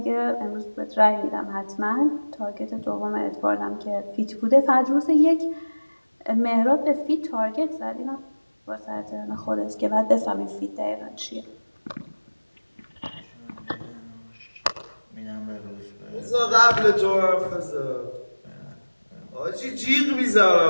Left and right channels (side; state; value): both; inverted; correlation -1.00